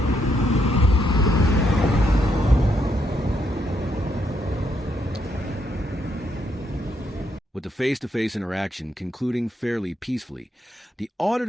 With the face-to-face interaction concluding fairly peacefully, the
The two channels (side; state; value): both; normal; correlation 0.76